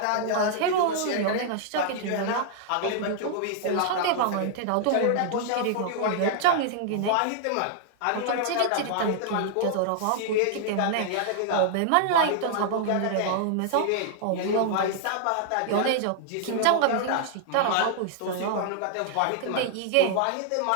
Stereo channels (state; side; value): different; both; correlation 0.00